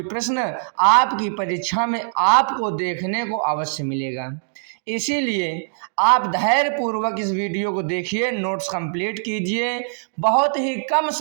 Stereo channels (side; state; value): left; silent; digital silence